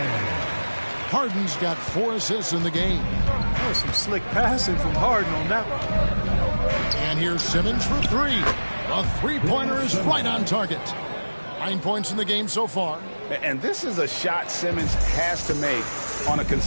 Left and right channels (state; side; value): inverted; both; correlation -1.00